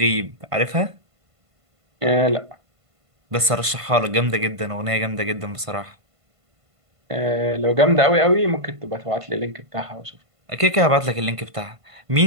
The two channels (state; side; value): late; left; 1.5 ms